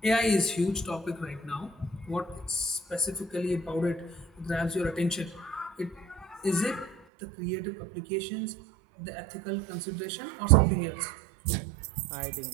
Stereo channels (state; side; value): drops out; left; at 7.0 s